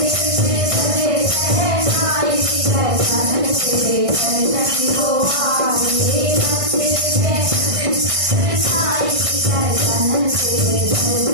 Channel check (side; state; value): left; late; 1.6 ms